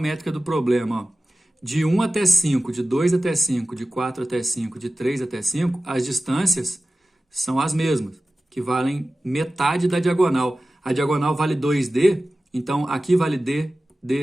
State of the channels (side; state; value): both; normal; correlation 0.96